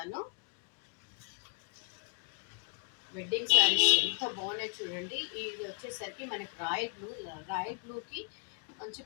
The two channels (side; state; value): right; quieter; 39.9 dB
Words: వెడ్డింగ్ శారీస్ ఎంత బాగున్నాయి చూడండి. ఇది వచ్చేసరికి మనకి రాయల్ బ్లూకి మంచి